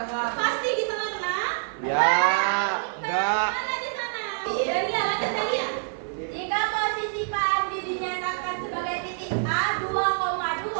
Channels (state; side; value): silent; left; 57 dB below the other